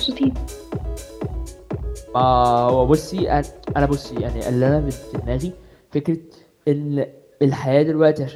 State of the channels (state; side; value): identical; both; correlation 1.00